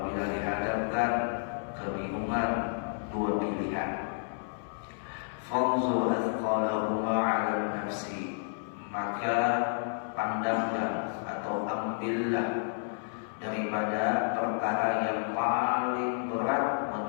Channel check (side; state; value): right; silent; 57 dB below the other